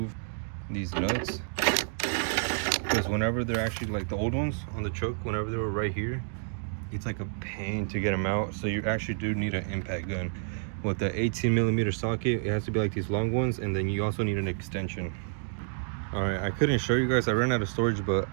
these nuts, because whenever they're actually like the old ones on the truck, whenever they were right here, it's like a pain to get them out. So you actually do need an impact gun. With the 18mm socket, it has to be like these long ones, and then you also need an extension. All right, I couldn't show you guys, I ran out of storage, but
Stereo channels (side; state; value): left; silent; digital silence